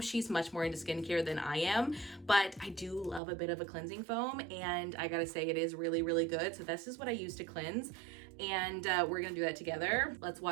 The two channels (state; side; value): drops out; left; at 3.2 s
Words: She's much more into skincare than I am, but I do love a bit of a cleansing foam, and I gotta say it is really, really good. So this is what I use to cleanse, and we're gonna do that together. Let's